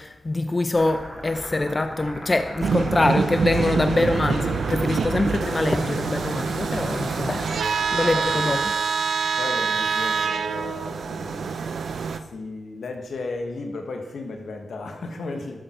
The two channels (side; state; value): both; normal; correlation 0.88